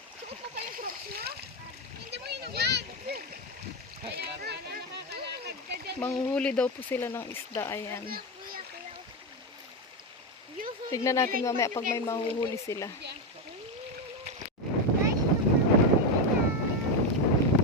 Manghuli daw po sila ng isda. Ayan. Tignan natin mamaya pag may mahuhuli sila.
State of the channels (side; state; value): both; normal; correlation 0.11